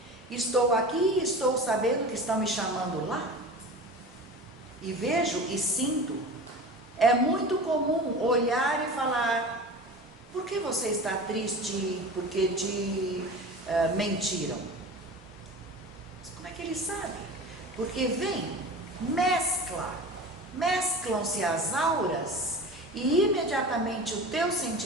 Estou aqui e estou sabendo que estão me chamando lá. E vejo e sinto. É muito comum olhar e falar, por que você está triste? Porque te mentiram. Mas como é que ele sabe? Porque vem, mesclam-se as auras e imediatamente o teu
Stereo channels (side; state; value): both; normal; correlation 0.34